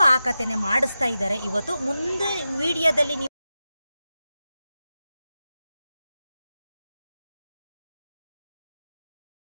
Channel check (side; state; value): both; inverted; correlation -0.92